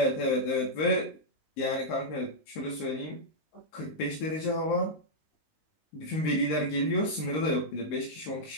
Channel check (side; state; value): right; late; 19 ms